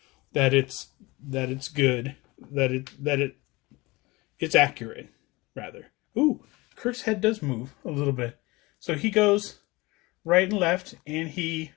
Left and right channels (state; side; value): quieter; right; 22.7 dB